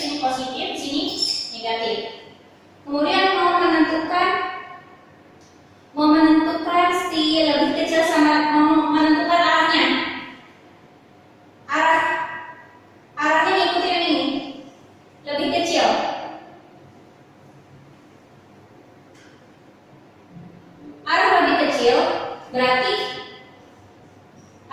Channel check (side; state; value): both; identical; correlation 1.00